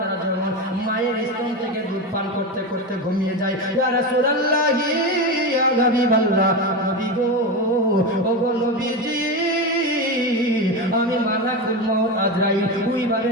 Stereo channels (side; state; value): both; normal; correlation 0.18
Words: যেমন মায়ের স্তন থেকে দুধ পান করতে করতে ঘুমিয়ে যায়, ইয়া রাসূলুল্লাহ ইয়া হাবিবাল্লাহ নবী গো ও গো নবীজি আমি মালাকুল মউত আজরাইল ওইভাবে